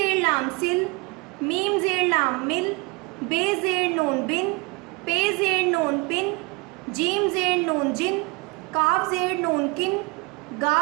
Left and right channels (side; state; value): left; quieter; 27.3 dB